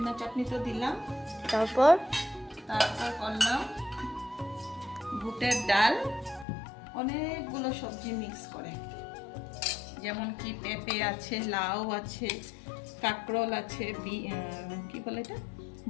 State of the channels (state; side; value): drops out; right; at 6.5 s